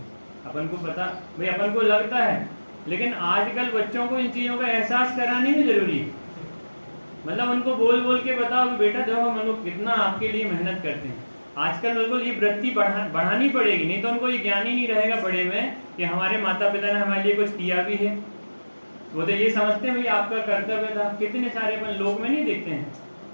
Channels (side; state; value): both; inverted; correlation -1.00